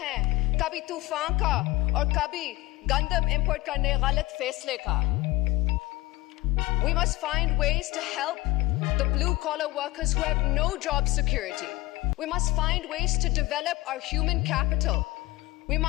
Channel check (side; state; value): right; quieter; 19.8 dB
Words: है, कभी तूफान का और कभी गंदम इंपोर्ट करने गलत फैसले का. We must find ways to help the blue-collar workers who have no job security. We must find ways to develop our human capital. We